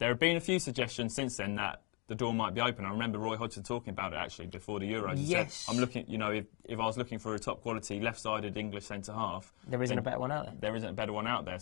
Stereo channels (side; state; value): right; quieter; 32.5 dB